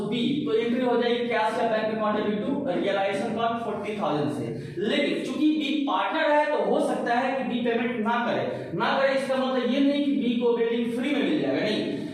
बी, तो एंट्री हो जाएगी कैश या bank account debit to realisation account 40,000 से। लेकिन चूंकि बी पार्टनर है तो हो सकता है कि बी पेमेंट ना करे, इसका मतलब ये नहीं कि बी को बिल्डिंग फ्री में मिल जाएगा, नहीं,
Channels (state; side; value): identical; both; correlation 1.00